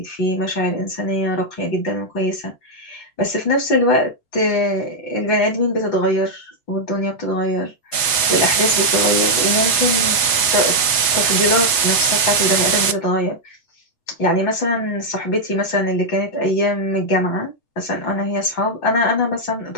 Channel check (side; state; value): right; late; 8.1 ms